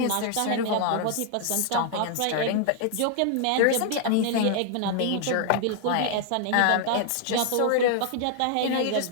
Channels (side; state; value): both; different; correlation 0.00